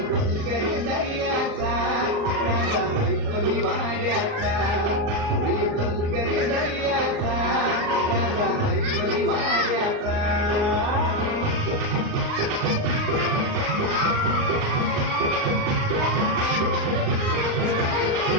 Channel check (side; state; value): left; late; 38 ms